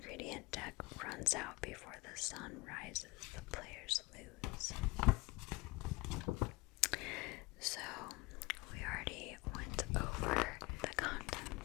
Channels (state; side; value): quieter; right; 23.9 dB